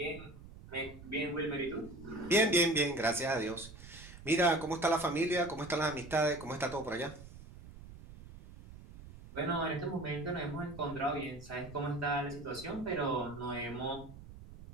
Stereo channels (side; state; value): right; noise; rumble, 16 dB below the sound